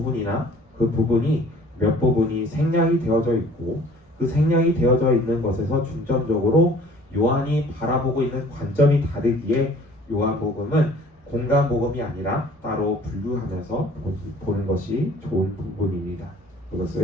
그 부분이 몇 부분이 생략이 되어져 있고, 그 생략이 되어져 있는 것에서 중점적으로 요한이 바라보고 있는 관점이 다르기에 요한복음은 공간복음이 아니라 따로 분류하면서 보는 것이 좋은 부분입니다.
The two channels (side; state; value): both; normal; correlation 0.52